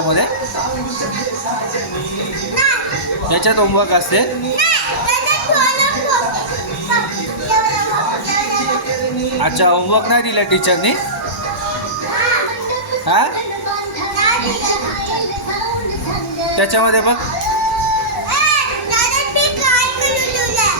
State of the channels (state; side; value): normal; both; correlation -0.19